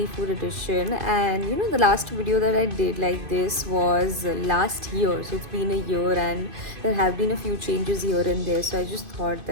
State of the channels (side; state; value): left; late; 2.5 ms